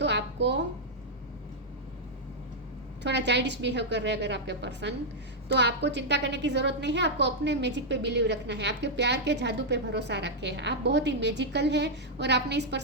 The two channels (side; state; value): both; normal; correlation -0.04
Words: आपको थोड़ा चाइल्डिश बिहेव कर रहे हैं अगर आपके पर्सन, तो आपको चिंता करने की जरूरत नहीं है। आपको अपने मैजिक पे बिलीव रखना है, आपके प्यार के जादू पे भरोसा रखें। आप बहुत ही मैजिकल है, और आपने इस